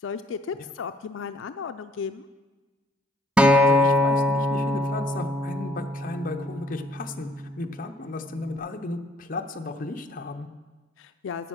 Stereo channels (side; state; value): both; normal; correlation 0.63